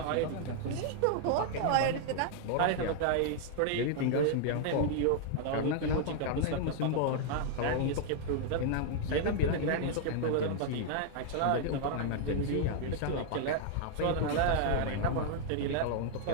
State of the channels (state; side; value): different; both; correlation 0.00